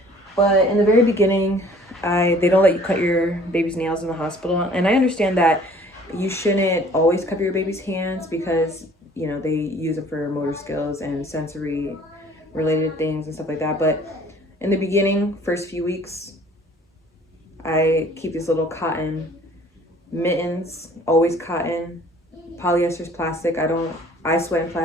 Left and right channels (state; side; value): normal; both; correlation 0.53